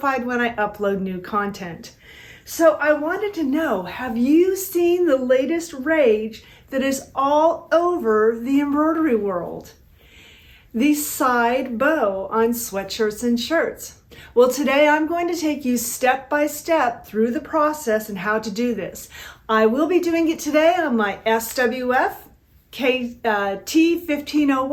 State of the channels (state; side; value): identical; both; correlation 1.00